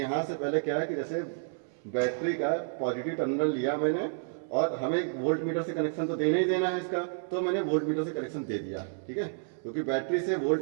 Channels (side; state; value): left; silent; 58 dB below the other